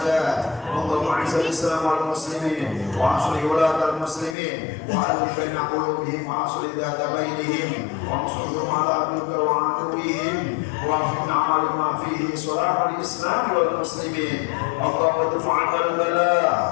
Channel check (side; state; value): right; drops out; at 4.4 s